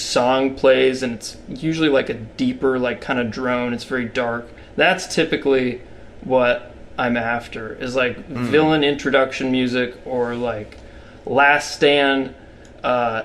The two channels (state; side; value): identical; both; correlation 1.00